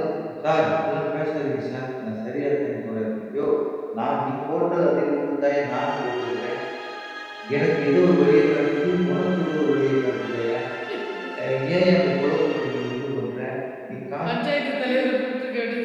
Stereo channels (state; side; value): identical; both; correlation 1.00